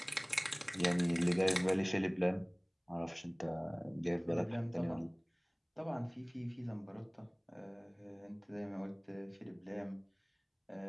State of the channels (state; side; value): identical; both; correlation 1.00